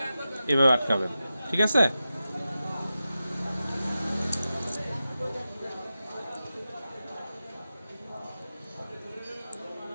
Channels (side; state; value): both; inverted; correlation -0.92